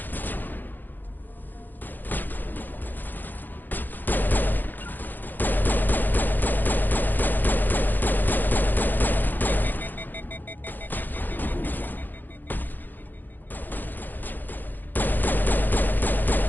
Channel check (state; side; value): late; right; 0.089 ms